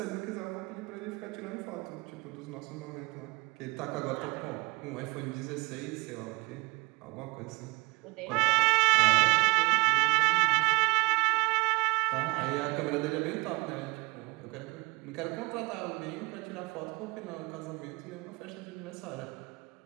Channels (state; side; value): quieter; left; 25.3 dB